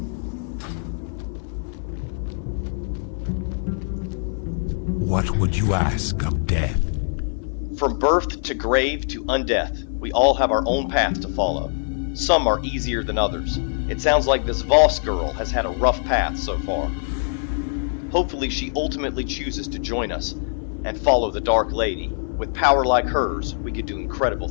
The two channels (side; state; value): right; silent; 63 dB below the other